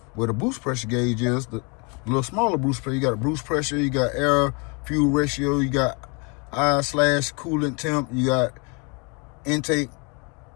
where the boost pressure gauge is, the little smaller boost pressure, you got a boost pressure, you got air fuel ratio, you got I/coolant temp, you got intake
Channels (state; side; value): quieter; right; 32.3 dB